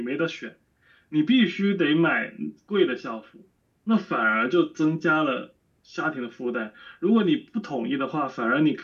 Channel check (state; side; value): identical; both; correlation 1.00